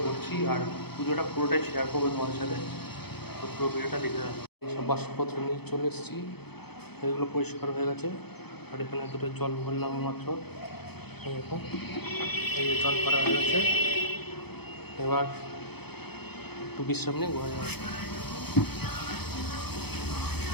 করছি আর পুজোটা পুরোটাই শেয়ার করবো তোমাদের সাথে। তো পুরো ভিডিওটা দেখে যাবো। এইসব বাসনপত্র নিয়ে চলে এসেছি, এগুলো পরিষ্কার হয়ে গেছে। আর এখানে দুটো জল ভরলাম মাত্র, এরকম এই যে জল ভরা হয়ে গেছে। এবার একটু বিশ্রাম নিয়ে ঘুরে যাবে।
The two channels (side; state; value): right; late; 0.98 ms